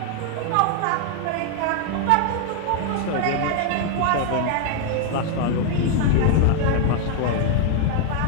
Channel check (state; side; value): different; both; correlation 0.00